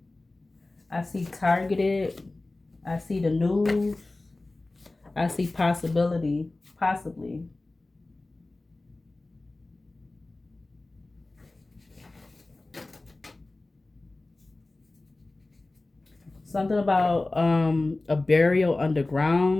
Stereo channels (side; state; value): right; quieter; 3.0 dB